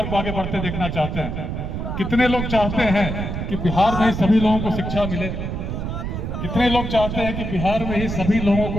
को आगे बढ़ते देखना चाहते हैं? कितने लोग चाहते हैं कि बिहार में ही सभी लोगों को शिक्षा मिले? कितने लोग चाहते हैं कि बिहार में ही सभी लोगों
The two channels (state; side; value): noise; right; rumble, 4 dB below the sound